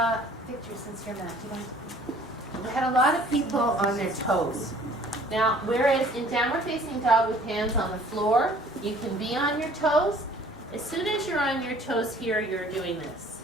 Victor, since you're not, we had a lot of people on their toes. Now, whereas in downward facing dog with hands on the floor, you can be on your toes. As soon as you're on your toes here, you're doing this,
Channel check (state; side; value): normal; both; correlation 0.54